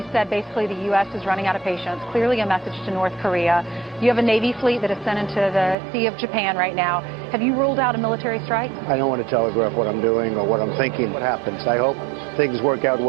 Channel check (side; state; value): left; drops out; at 5.8 s